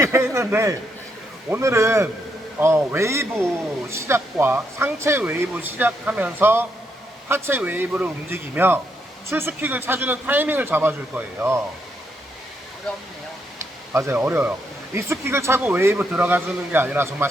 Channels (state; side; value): normal; both; correlation 0.77